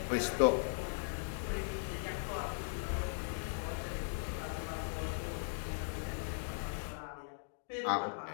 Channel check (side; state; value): right; silent; digital silence